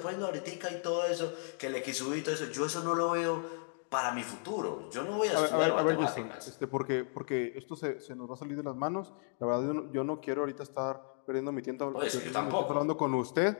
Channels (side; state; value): right; silent; 55 dB below the other